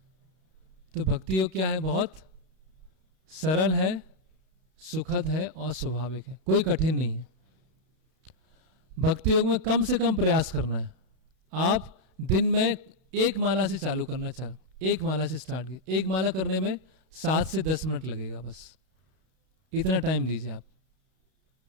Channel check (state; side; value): late; left; 32 ms